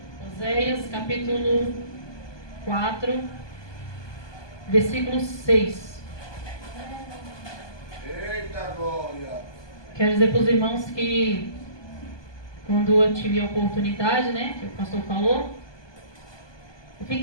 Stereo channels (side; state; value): right; late; 1.2 ms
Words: Oséias, capítulo 4, versículo 6. Eita glória! Quero dizer para os irmãos que quando eu tive a oportunidade, né, que o pastor falou, eu